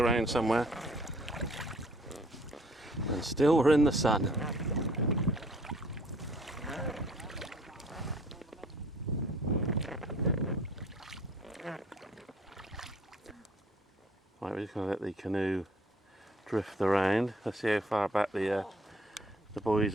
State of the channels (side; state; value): both; normal; correlation 0.58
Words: somewhere. And still we're in the sun. Right, we're just going to let the canoe drift around. Let's see how far back the boys